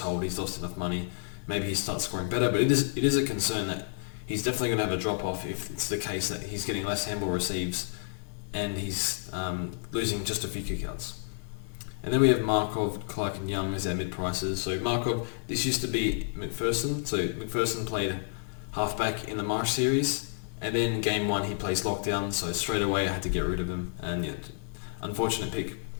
hold. He's lost enough money. Maybe he starts scoring better, but it is a concern that he's definitely going to have a drop-off if it's the case that he's getting less handball receives and he's losing just a few kickouts. And then we have Markov, Clark and Young as our mid-prices. So Markov, this used to be McPherson. So McPherson played halfback in the Marsh series, and then game 1 he plays lockdown, so straight away I had to get rid of him. And unfortunate pick. I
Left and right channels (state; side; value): silent; right; digital silence